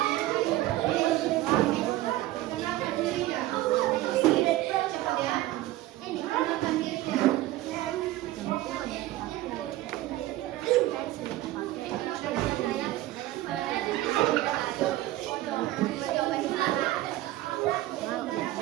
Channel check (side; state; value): left; quieter; 16.1 dB